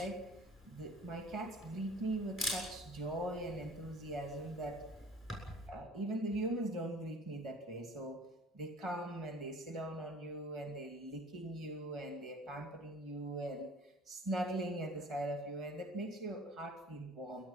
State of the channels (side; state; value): both; normal; correlation 0.48